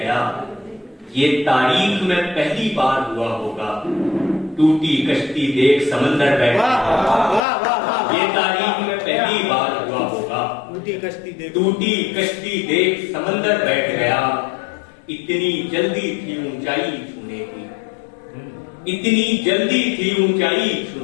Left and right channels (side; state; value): right; drops out; at 7.4 s